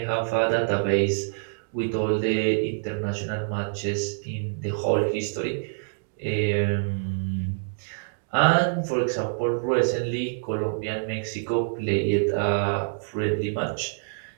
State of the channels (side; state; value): left; silent; digital silence